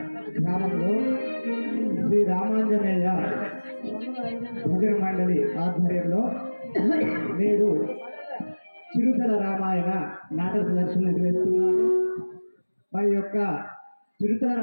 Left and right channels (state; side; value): inverted; both; correlation -1.00